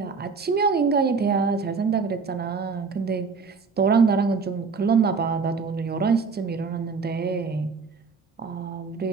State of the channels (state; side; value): quieter; left; 4.9 dB